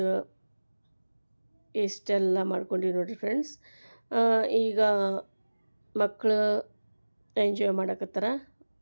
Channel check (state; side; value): inverted; both; correlation -1.00